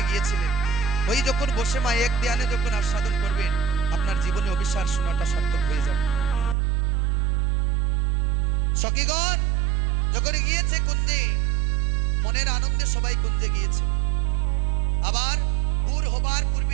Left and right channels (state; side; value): drops out; left; at 6.6 s